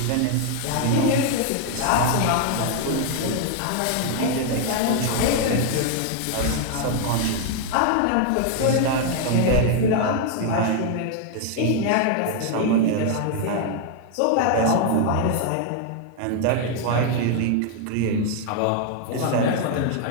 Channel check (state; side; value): different; both; correlation 0.00